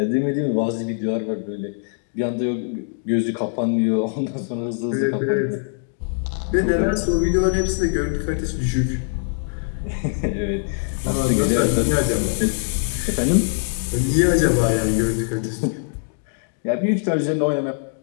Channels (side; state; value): right; silent; digital silence